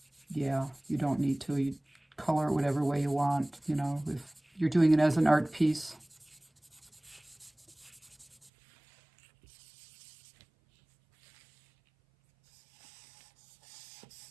yeah, you don't need to. You color it whatever way you want, you know, if you're doing it as an art piece.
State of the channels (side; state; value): left; drops out; at 8.5 s